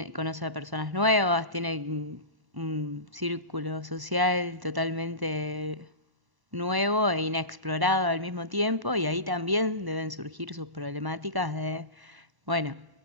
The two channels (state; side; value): late; left; 1.0 ms